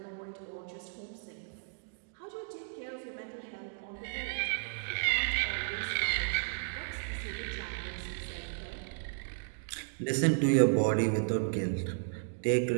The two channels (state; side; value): silent; left; digital silence